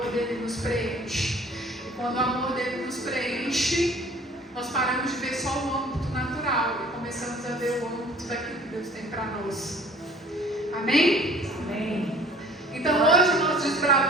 dele nos preenche. E quando o amor dele nos preenche, nós paramos de ver só o âmbito natural e começamos a ver o âmbito daquilo que Deus tem para nós. Amém? Amém. Então hoje nós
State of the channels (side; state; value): both; normal; correlation 0.51